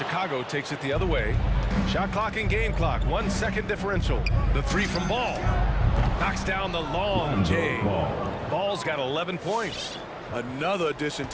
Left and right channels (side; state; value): both; identical; correlation 1.00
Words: takes it the other way. Shot clock and game clock. 1 second differential. The 3 from Ball. Knocks down the long J. Ball's got 11 points. Another addition